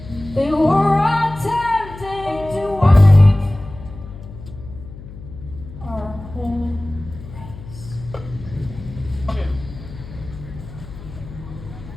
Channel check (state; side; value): noise; left; hum, 15 dB below the sound